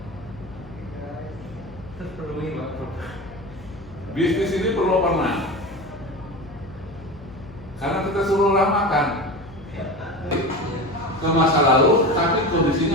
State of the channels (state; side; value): noise; left; hum, 20 dB below the sound